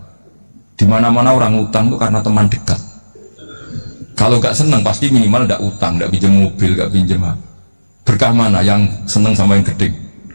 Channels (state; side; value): inverted; both; correlation -1.00